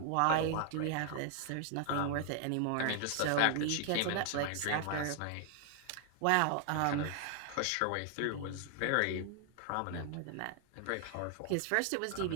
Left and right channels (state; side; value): different; both; correlation 0.00